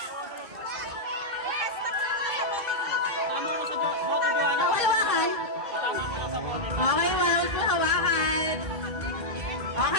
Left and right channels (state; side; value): late; left; 2.1 ms